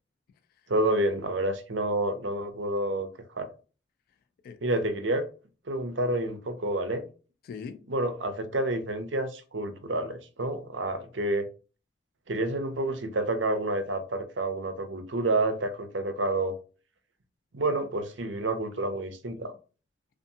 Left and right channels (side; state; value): both; normal; correlation -0.06